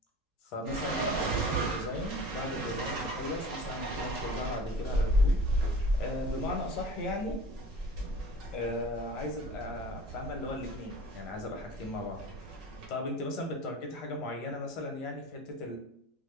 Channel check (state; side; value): normal; both; correlation 0.41